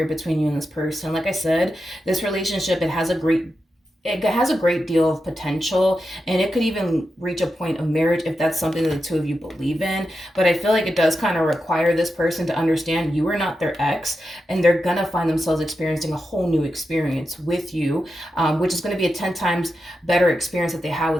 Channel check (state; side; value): normal; both; correlation 0.89